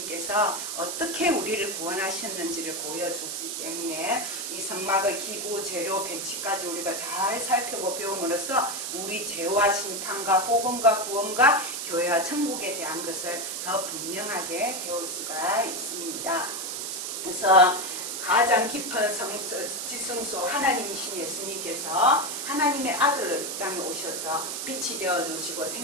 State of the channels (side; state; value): right; noise; hiss, 4 dB below the sound